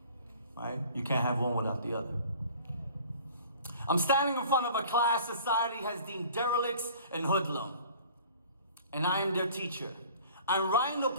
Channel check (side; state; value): both; inverted; correlation -0.48